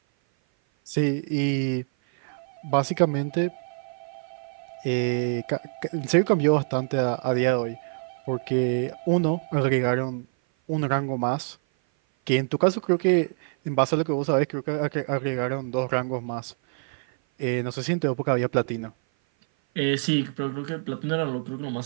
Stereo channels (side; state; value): left; silent; 56 dB below the other